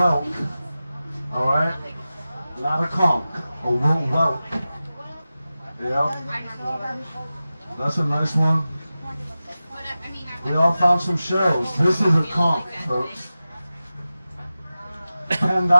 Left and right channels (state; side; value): inverted; both; correlation -0.95